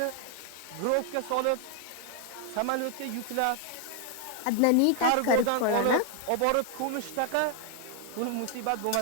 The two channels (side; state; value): both; different; correlation 0.00